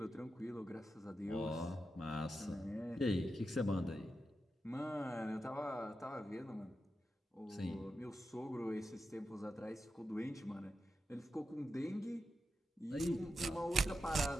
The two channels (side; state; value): both; normal; correlation 0.89